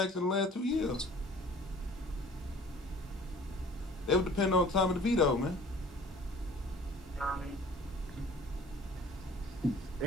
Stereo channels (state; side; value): normal; both; correlation 0.48